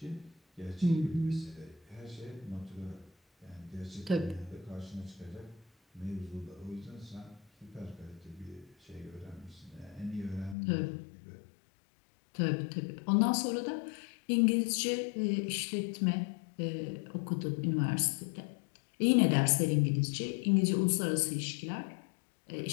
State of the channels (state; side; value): drops out; right; at 10.6 s